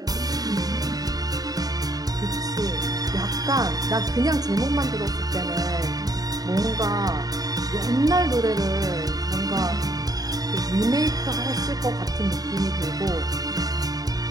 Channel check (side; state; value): left; late; 0.18 ms